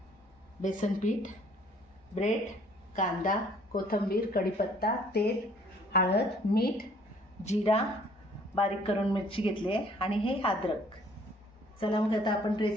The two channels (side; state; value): both; normal; correlation 0.59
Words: बेसन पीठ, ब्रेड, कांदा, कोथिंबीर, कढीपत्ता, तेल, हळद, मीठ, जिरा, बारीक करून मिरची घेतली आहे आणि हे अद्रक। चला मग आता आपण